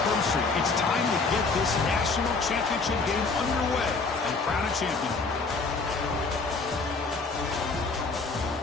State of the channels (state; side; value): quieter; right; 4.1 dB